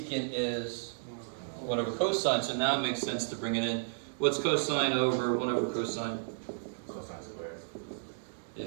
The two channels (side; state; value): left; silent; digital silence